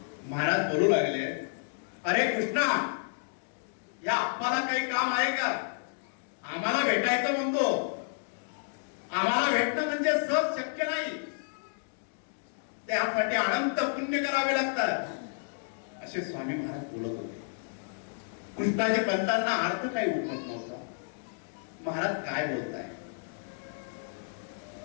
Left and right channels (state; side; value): silent; right; digital silence